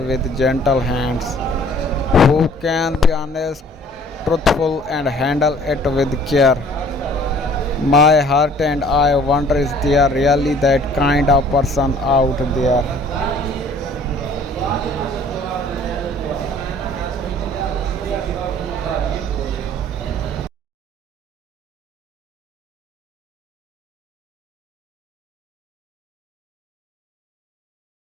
gentle hands. Who can be honest, truthful, and handle it with care. My heart and I wonder, is there really that kind of person out there?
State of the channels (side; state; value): both; normal; correlation 0.53